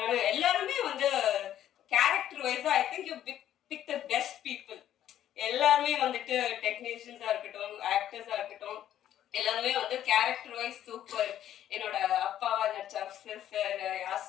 எல்லாருமே வந்து கேரக்டர் வைஸா I think you pick the best people. எல்லாருமே வந்துட்டு டெக்னீஷியன்ஸா இருக்கட்டும், ஆக்டர்ஸா இருக்கட்டும், எல்லாருமே வந்து கேரக்டர் வைஸ் சூப்பர். என்னோட அப்பாவா நடிச்ச அப்சர் சார்,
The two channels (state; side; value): quieter; right; 11.4 dB